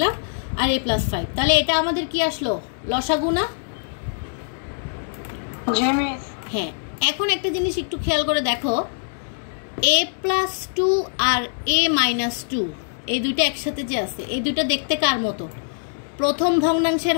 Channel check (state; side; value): silent; right; digital silence